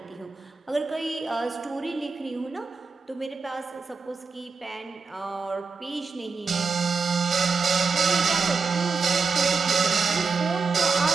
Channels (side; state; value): left; quieter; 4.7 dB